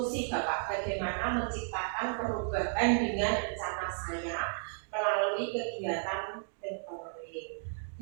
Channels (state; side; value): silent; left; digital silence